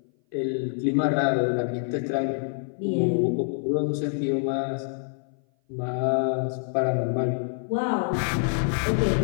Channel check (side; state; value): right; silent; 57 dB below the other